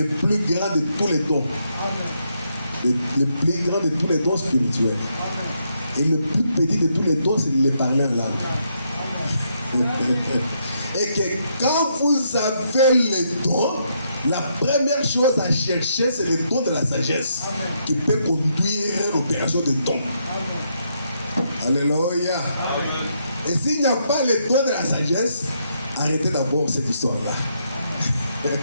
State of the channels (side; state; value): both; inverted; correlation -0.77